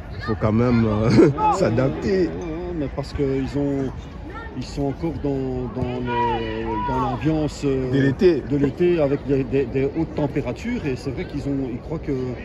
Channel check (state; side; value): identical; both; correlation 1.00